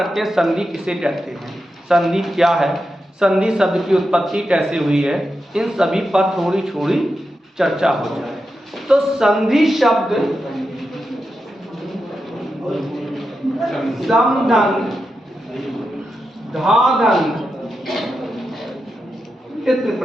हैं संधि किसे कहते हैं, संधि क्या है, संधि शब्द की उत्पत्ति कैसे हुई है, इन सभी पर थोड़ी थोड़ी चर्चा हो जाए। तो संधि शब्द समधन, धाधन, तित्र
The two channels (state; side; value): normal; both; correlation 0.88